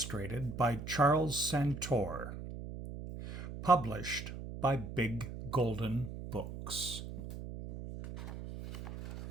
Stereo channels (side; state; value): right; noise; hum, 9 dB below the sound